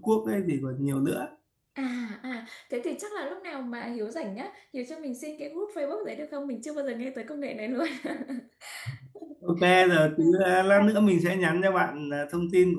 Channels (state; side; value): identical; both; correlation 1.00